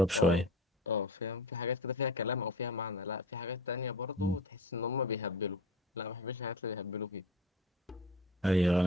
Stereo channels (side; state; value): both; normal; correlation 0.33